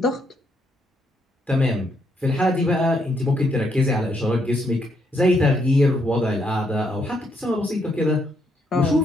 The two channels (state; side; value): normal; both; correlation 0.75